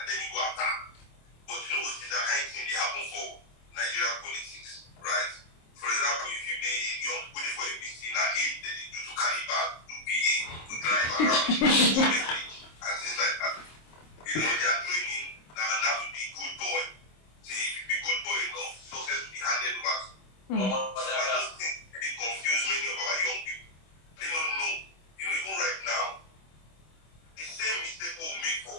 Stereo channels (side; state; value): right; late; 26 ms